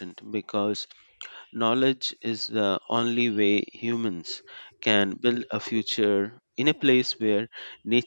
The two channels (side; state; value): both; inverted; correlation -1.00